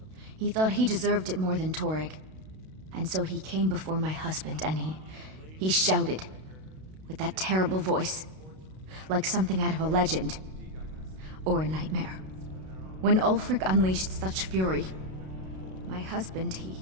He thought he deserved it more than Torrig. And so he came before my husband and he shouted with that terrible voice, like something out of a legend or a nightmare. When Ulfric unleashed such fury, my husband,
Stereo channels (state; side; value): late; left; 32 ms